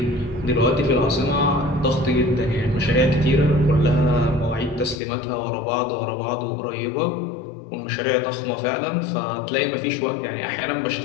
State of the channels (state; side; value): drops out; right; at 5.0 s